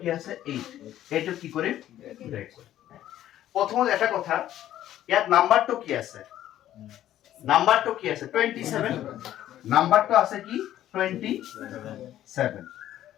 কি আছে 8 এইটো কি কৰিম ব্ৰেক কৰিম প্ৰথমত এটা কথা ইয়াত নাম্বাৰটো কি আছে 27 নাম্বাৰটো আছে কি 27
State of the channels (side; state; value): right; quieter; 12.5 dB